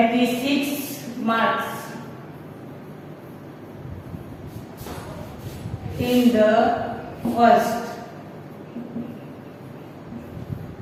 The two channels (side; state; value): both; identical; correlation 1.00